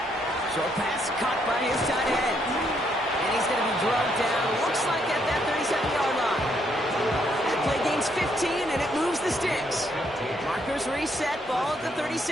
Short pass caught by his tight end. And he's going to be drugged down. Looks like at that 37-yard line. That play gains 15, and it moves the sticks. Markers reset, ball at the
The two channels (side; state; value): both; normal; correlation 0.73